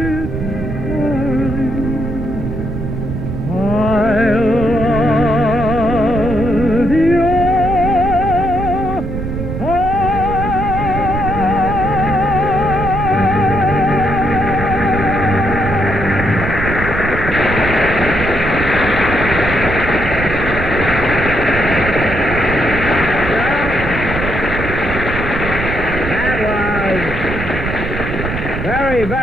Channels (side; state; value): right; noise; rumble, 5 dB below the sound